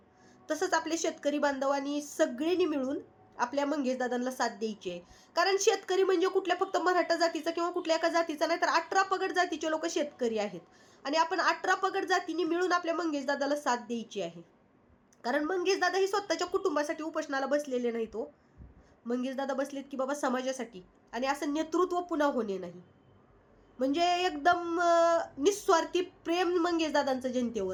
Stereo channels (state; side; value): identical; both; correlation 1.00